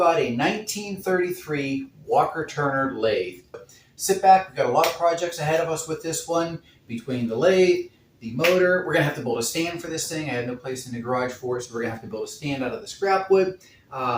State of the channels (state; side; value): identical; both; correlation 1.00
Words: a 1933 Walker-Turner lathe. Sit back, we've got a lot of projects ahead of us with this one. Between the lathe, the motor, we're gonna have to build a stand for this thing. I have no place in the garage for it, so we're gonna have to build a stand out of the scrap wood.